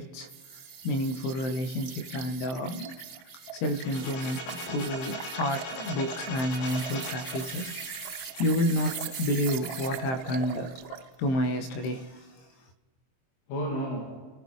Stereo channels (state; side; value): late; right; 23 ms